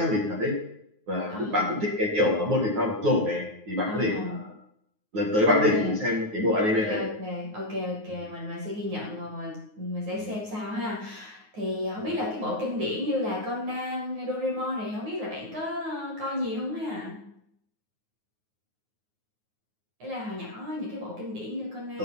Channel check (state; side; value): late; left; 9.4 ms